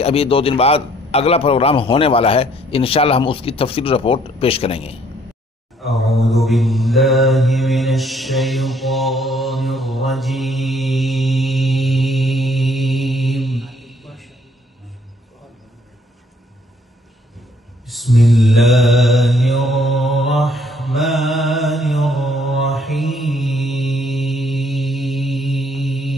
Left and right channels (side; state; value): both; normal; correlation 0.64